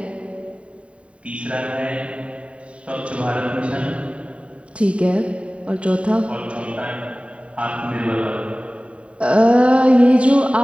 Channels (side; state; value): left; late; 0.062 ms